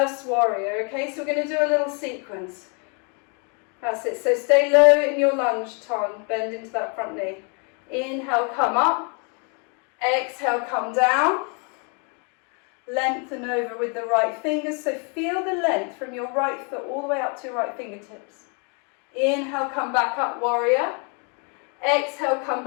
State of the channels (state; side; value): quieter; right; 36.7 dB